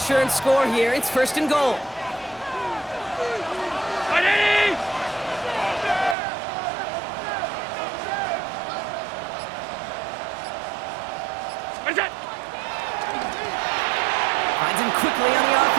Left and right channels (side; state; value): left; drops out; at 6.2 s